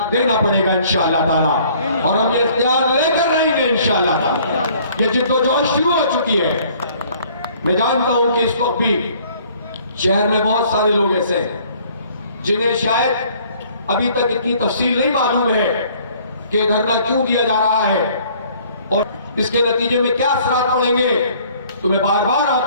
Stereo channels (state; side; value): inverted; both; correlation -0.57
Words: دینا پڑے گا انشاءاللہ تعالی، اور ہم یہ اختیار لے کر رہیں گے انشاءاللہ تعالی۔ یہ جد و جہد شروع ہو چکی ہے۔ میں جانتا ہوں کہ اس وقت بھی شہر میں بہت سارے لوگ ایسے ہیں جنہیں شاید ابھی تک اتنی تفصیل نہیں معلوم ہے کہ دھرنا کیوں دیا جا رہا ہے، اور اس کے نتیجے میں کیا اثرات پڑیں گے؟ تو میں بار بار